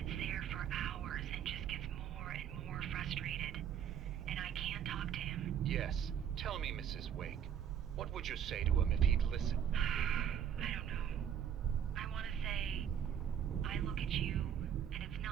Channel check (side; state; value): left; quieter; 8.9 dB